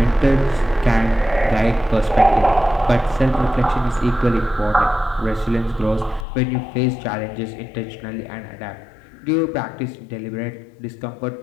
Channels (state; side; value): drops out; right; at 6.2 s